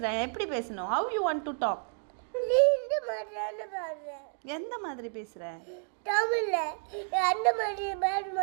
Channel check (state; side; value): silent; left; 57 dB below the other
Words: எப்படி பேசணும்? How you want to talk? நீ இந்த மாதிரி பேசுற. எந்த மாதிரி பேசுற? தமிழ்ல அந்த மாதிரி பேச